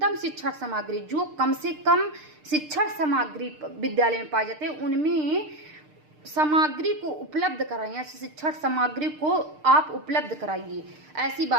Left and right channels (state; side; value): late; left; 6.6 ms